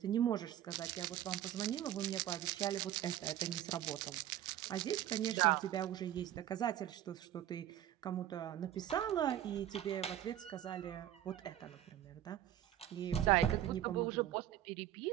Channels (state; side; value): quieter; left; 12.0 dB